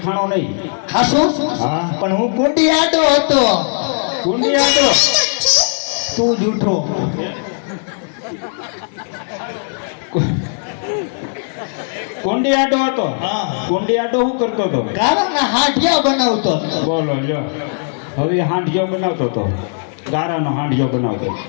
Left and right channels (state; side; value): silent; right; 61 dB below the other